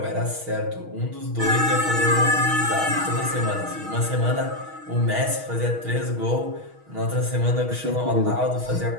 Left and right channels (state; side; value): late; left; 6.3 ms